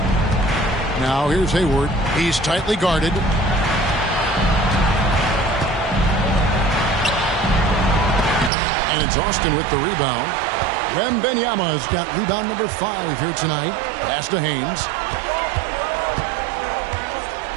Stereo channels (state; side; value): drops out; left; at 8.5 s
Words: Now here's Hayward. He's tightly guarded. And it's Austin with the rebound. Wembanyama's got rebound number 5 here tonight. Pass to Haynes.